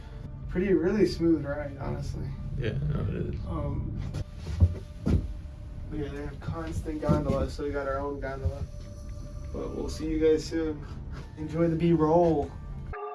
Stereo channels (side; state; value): both; identical; correlation 1.00